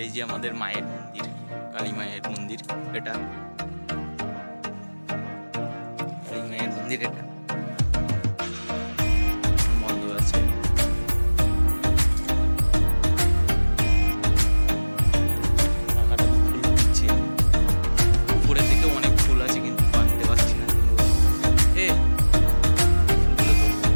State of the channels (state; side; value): inverted; both; correlation -1.00